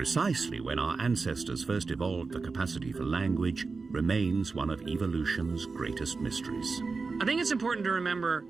when our ancestors first evolved the capacity for language remains one of evolution's greatest mysteries. I think it's important to remember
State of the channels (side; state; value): left; quieter; 4.3 dB